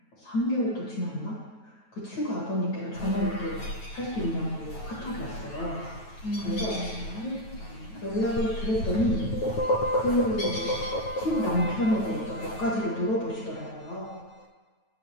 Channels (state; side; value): late; right; 9.2 ms